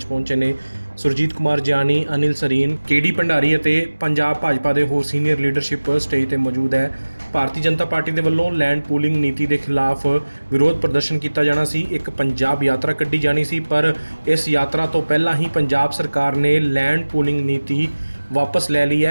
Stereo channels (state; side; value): inverted; both; correlation -1.00